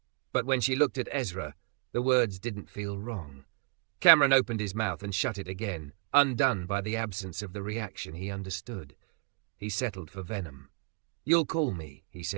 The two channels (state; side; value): quieter; left; 33.2 dB